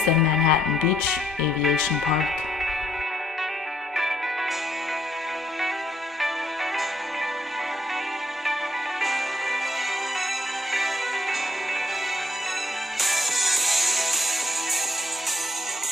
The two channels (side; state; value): both; normal; correlation 0.70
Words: than Manhattan Beach Aviation Park.